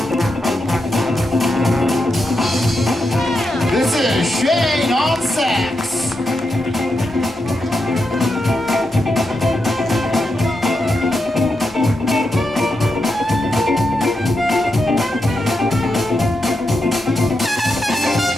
This is Shane on sax.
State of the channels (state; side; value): normal; both; correlation 0.85